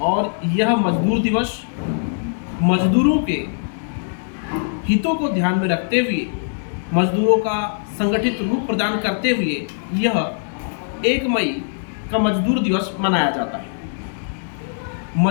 और यह मजदूर दिवस मजदूरों के हितों को ध्यान में रखते हुए, मजदूरों का संगठित रूप प्रदान करते हुए यह 1 मई का मजदूर दिवस मनाया जाता है।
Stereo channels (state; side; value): silent; right; digital silence